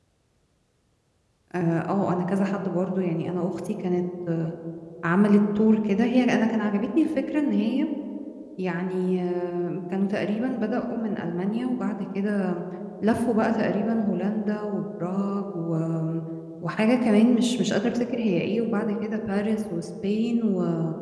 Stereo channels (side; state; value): both; identical; correlation 1.00